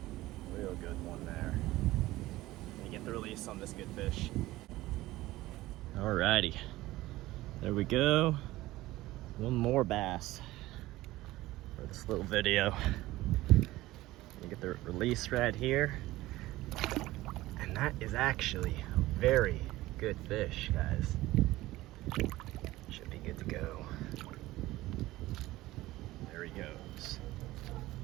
Real good one there. Gonna get the release on this good fish. Alrighty, there we go. One more bass for this little video. Gonna get the release right here. And that is actually a very good fish, guys. Should be good to go. There he goes.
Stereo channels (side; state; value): left; quieter; 17.4 dB